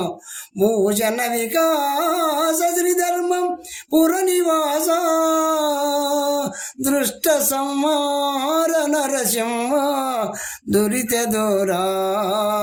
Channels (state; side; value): identical; both; correlation 1.00